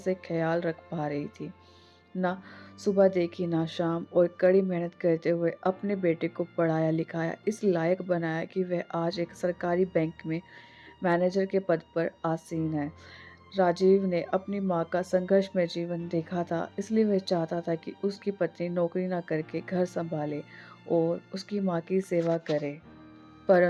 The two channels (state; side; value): identical; both; correlation 1.00